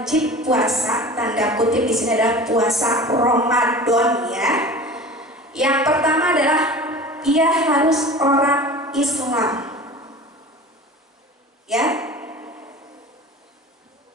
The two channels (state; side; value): normal; both; correlation 0.37